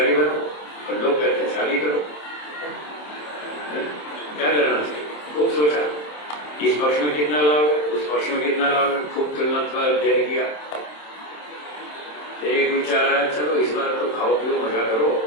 बनो और लोग कहते हैं शादी करो, क्या करना चाहिए? खूब सोचा, इस पक्ष में कितना लाभ है, उस पक्ष में कितना लाभ है, खूब तुलनात्मक अध्ययन किया। एक विचार आया, चलो इस बार तो खाओ पियो मजा करो,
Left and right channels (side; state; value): right; late; 27 ms